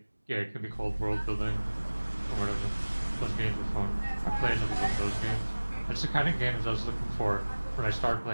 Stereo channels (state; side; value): inverted; both; correlation -1.00